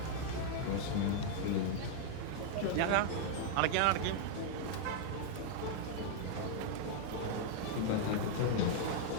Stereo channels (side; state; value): both; different; correlation 0.00